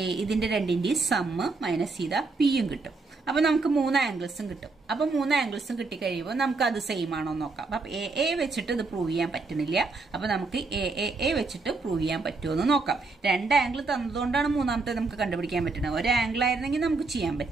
ഇതിന്റെ രണ്ടിന്റെയും സം മൈനസ് ചെയ്താൽ പിയും കിട്ടും. അപ്പൊ നമുക്ക് 3 ആംഗിൾസും കിട്ടും. അപ്പൊ 3 ആംഗിൾസും കിട്ടിക്കഴിയുമ്പോൾ നമുക്ക് അത് സെയിം ആണോ നോക്കാം. അപ്പൊ എ വെച്ചിട്ട് ഇത് പ്രൂവ് ചെയ്യാൻ പറ്റുന്നില്ല. അപ്പൊ നമുക്ക് എ വെച്ചിട്ട് പ്രൂവ് ചെയ്യാൻ പറ്റുമോ എന്ന് നോക്കാം. രണ്ട് ആംഗിൾ തന്നതുകൊണ്ടാണ് മൂന്നാമത്തെ നമുക്ക് കണ്ടുപിടിക്കാൻ പറ്റുന്നത്. ഒരു ആംഗിൾ ആയിരുന്നെങ്കിൽ നമുക്ക് ചെയ്യാൻ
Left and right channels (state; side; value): quieter; left; 3.9 dB